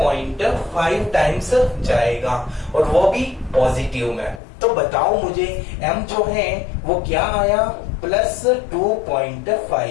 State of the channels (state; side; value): drops out; right; at 4.4 s